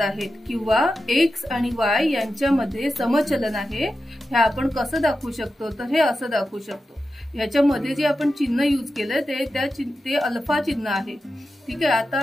आहेत किंवा एक्स आणि वाय यांच्यामध्ये समचलन आहे हे आपण कसं दाखवू शकतो, तर हे असं दाखवू शकतो। ह्याच्यामध्ये जे आपण चिन्ह यूज केलं ते अल्फा चिन्ह आहे। ठीक आहे,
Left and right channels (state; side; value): normal; both; correlation 0.91